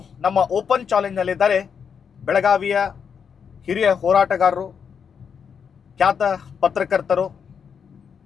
ನಮ್ಮ ಓಪನ್ ಚಾಲೆಂಜ್ನಲ್ಲಿದ್ದಾರೆ ಬೆಳಗಾವಿಯ ಹಿರಿಯ ಹೋರಾಟಗಾರರು, ಖ್ಯಾತ ಪತ್ರಕರ್ತರು,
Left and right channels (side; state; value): right; quieter; 6.9 dB